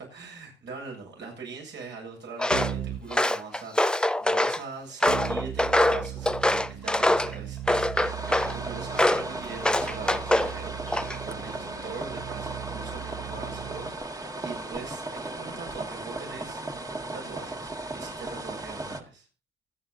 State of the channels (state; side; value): normal; both; correlation 0.81